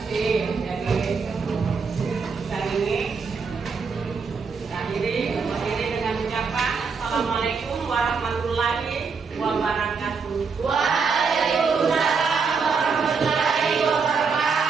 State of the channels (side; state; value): left; quieter; 5.2 dB